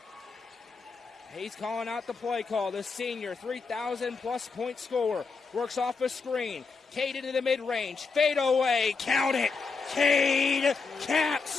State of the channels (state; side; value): quieter; right; 4.7 dB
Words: He's calling out the play call. The senior, 3,000-plus point scorer, works off a screen. Cade into the mid-range. Fade away. Count it. Cade